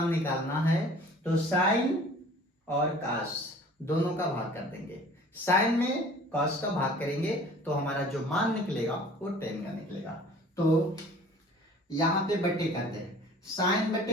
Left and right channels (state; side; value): normal; both; correlation 0.48